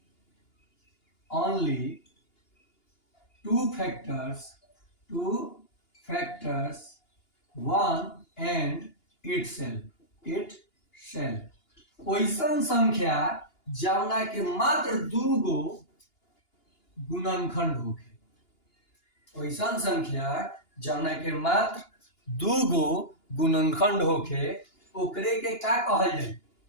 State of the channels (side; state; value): right; late; 2.9 ms